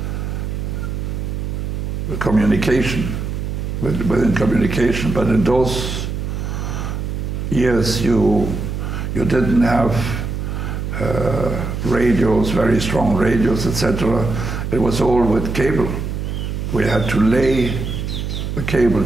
communication, within communication. But in those years, you didn't have radios, very strong radios, etc. It was all with cable. We had to lay the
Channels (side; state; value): right; noise; hum, 4 dB below the sound